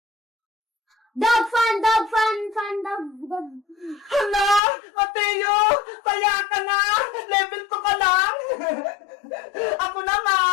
Dog fan. Hala, Mateo, taya ka na, level 2 ka lang. Ako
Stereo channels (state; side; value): drops out; right; at 4.6 s